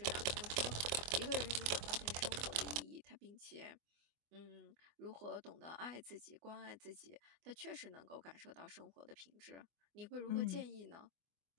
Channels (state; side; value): late; left; 24 ms